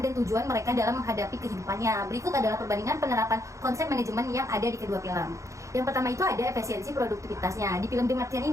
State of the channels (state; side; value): late; left; 0.15 ms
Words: tujuan mereka dalam menghadapi kehidupannya. Berikut adalah perbandingan penerapan konsep manajemen yang ada di kedua film. Yang pertama itu ada efisiensi produktivitasnya. Di film The Martian